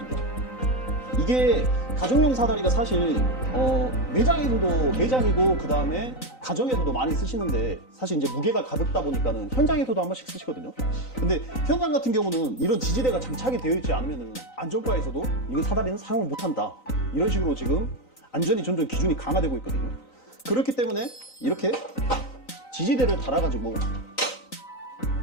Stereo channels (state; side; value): late; right; 3.9 ms